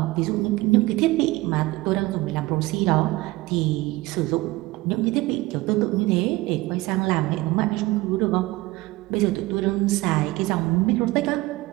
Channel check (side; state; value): left; quieter; 20.2 dB